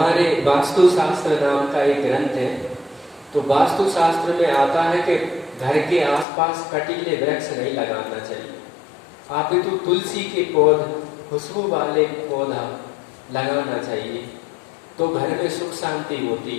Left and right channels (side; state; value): right; drops out; at 6.2 s